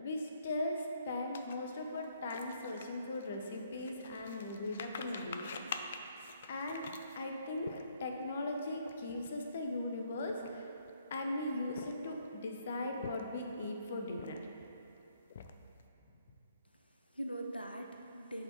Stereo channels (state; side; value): inverted; both; correlation -0.69